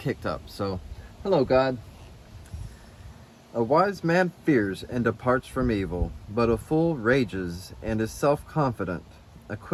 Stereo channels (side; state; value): both; identical; correlation 1.00